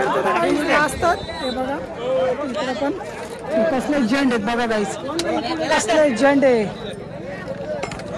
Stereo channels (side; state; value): both; identical; correlation 1.00